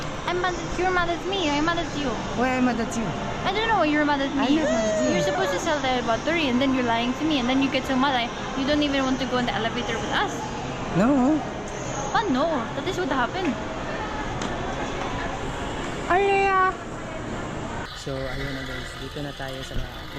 I'm mad. You're mad at me. I'm mad at you. Why am I mad at you? I don't know why you're mad at me. I'm not mad at you. You're supposed to sell the battery and then you're lying to me and then you get so mad. You don't even want to go in the elevator with us. No. But no, that is what happened. Alea! So, ayun na guys. Dito na tayo sa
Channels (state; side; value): identical; both; correlation 1.00